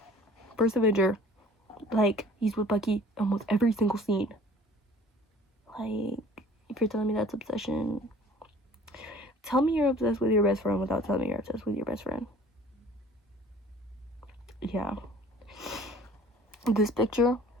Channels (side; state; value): both; normal; correlation 0.50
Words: First Avenger, like, he's with Bucky almost every single scene. Like, if you're telling me that's obsession, tell me you're obsessed with your best friend without telling me you're obsessed with your best friend. Yeah. This picture,